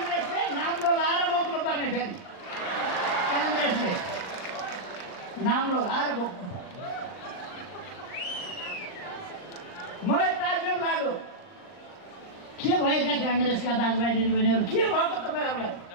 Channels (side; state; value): right; late; 39 ms